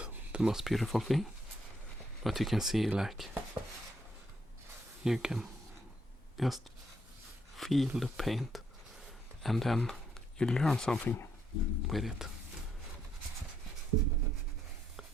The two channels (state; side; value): normal; both; correlation 0.75